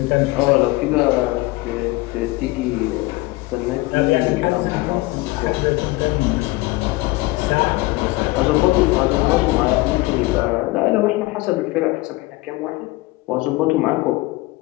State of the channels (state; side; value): quieter; right; 21.1 dB